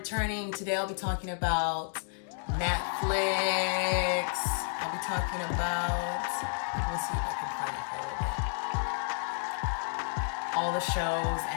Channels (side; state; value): right; silent; digital silence